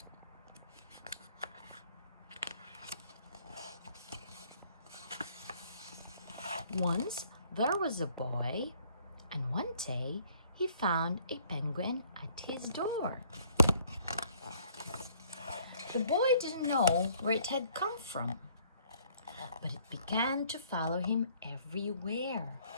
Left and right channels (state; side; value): inverted; both; correlation -0.61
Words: Once there was a boy, and one day he found a penguin at his door. The boy didn't know where it had come from, but it began to follow him everywhere.